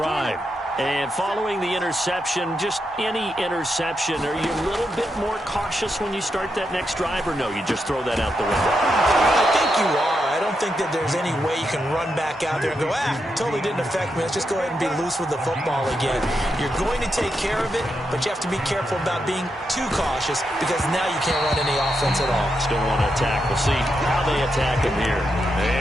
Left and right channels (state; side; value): normal; both; correlation 0.84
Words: And following the interception, just any interception, are you a little bit more cautious when you start that next drive, or no, you just throw that out the window? I think you are. I don't think that there's any way you can run back out there and go, totally didn't affect me. Let's just go ahead and be loose with the football again. You're going to take care of it, but you have to be careful about being too cautious because now you can't run any offense at all. Still want to attack. We'll see how they attack him here.